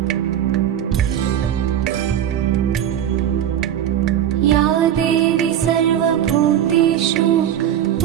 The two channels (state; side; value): quieter; left; 10.3 dB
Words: या देवी सर्वभूतेषु